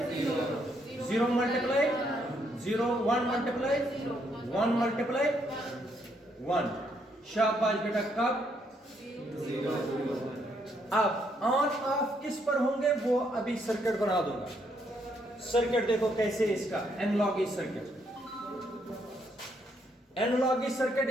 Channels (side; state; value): both; normal; correlation 0.73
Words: 0 मल्टीप्लाई 0 1 मल्टीप्लाई 1 मल्टीप्लाई 1। शाबाश बेटा। कब? अब ऑन ऑफ किस पर होंगे वो अभी सर्किट बना दूंगा। सर्किट देखो कैसे इसका एनालॉगी सर्किट। एनालॉगी सर्किट